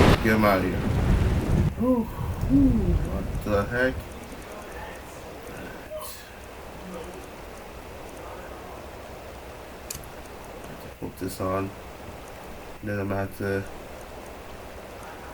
Get him out of here. Oh. What the heck? Put this on. Then I'm gonna have to.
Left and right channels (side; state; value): both; identical; correlation 1.00